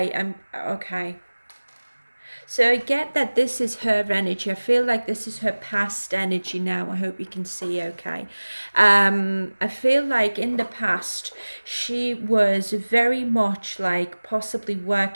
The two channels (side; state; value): both; inverted; correlation -1.00